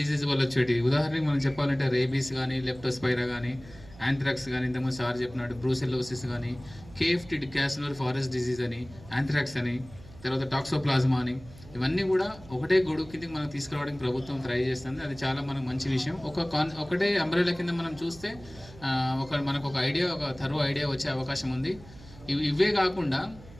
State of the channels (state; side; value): noise; right; hum, 20 dB below the sound